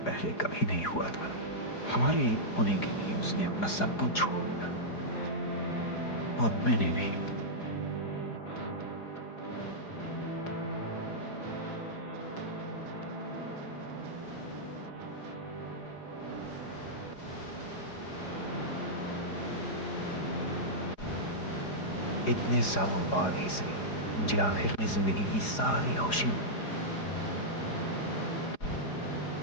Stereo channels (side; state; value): right; late; 4.8 ms